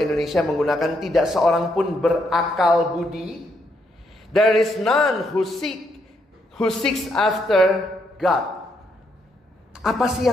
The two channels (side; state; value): both; normal; correlation 0.76